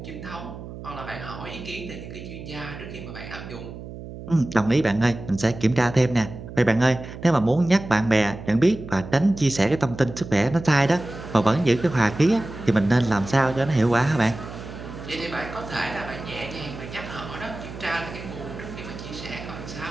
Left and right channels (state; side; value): noise; right; hum, 12 dB below the sound